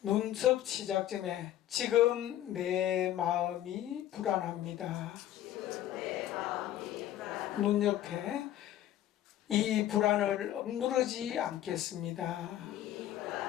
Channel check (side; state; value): right; quieter; 12.6 dB